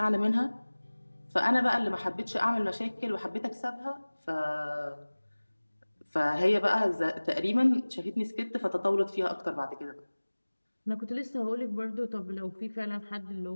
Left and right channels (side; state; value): both; inverted; correlation -1.00